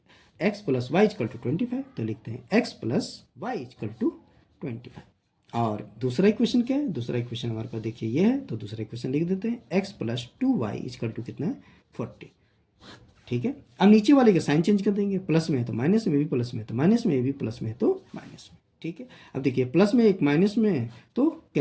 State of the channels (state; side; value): identical; both; correlation 1.00